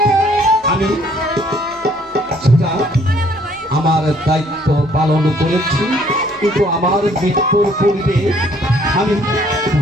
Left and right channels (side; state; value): both; normal; correlation 0.62